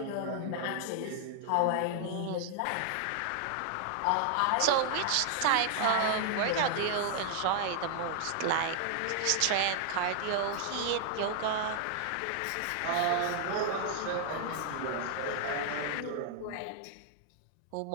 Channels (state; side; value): different; both; correlation 0.00